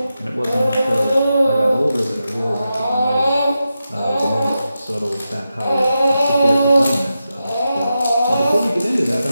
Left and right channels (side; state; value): both; inverted; correlation -0.89